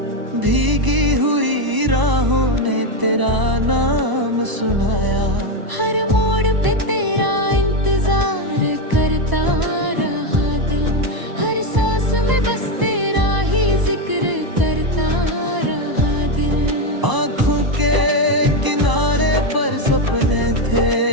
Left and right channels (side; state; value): left; late; 1.0 ms